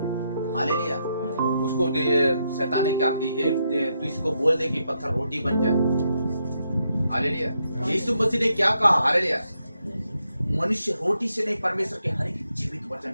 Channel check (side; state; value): both; inverted; correlation -0.80